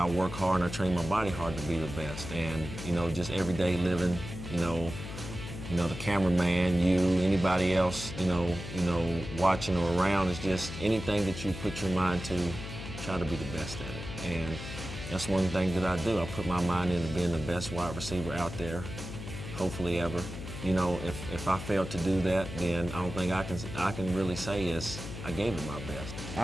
work hard and I train my body hard to be the best, and, just everyday living, the cameraman, you, anybody else, watching or around, is just anything that you put your mind to, try to be the best at it. And that's one thing that I do. I put my mind into being the best wide receiver out there, hopefully ever. If I failed to do that, then I don't think I can really say is I gave it my best.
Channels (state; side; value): noise; left; hum, 9 dB below the sound